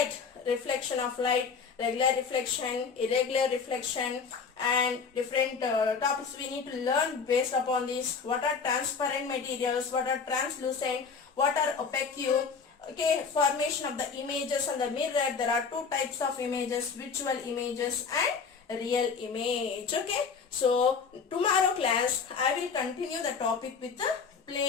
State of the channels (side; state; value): right; quieter; 5.6 dB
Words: reflection of light, regular reflection, irregular reflection, and different topics we need to learn based upon this. What are transparent materials, what are translucent, what are opaque. Okay, formation of the images on the mirror. There are two types of images, virtual images and real image. Okay, so tomorrow class I will continue the topic with the